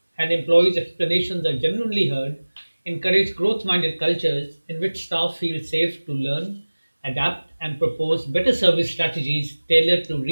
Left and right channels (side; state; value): both; inverted; correlation -1.00